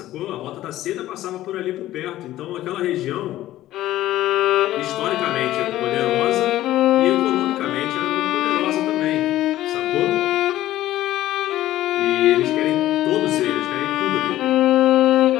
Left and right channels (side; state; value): right; quieter; 14.6 dB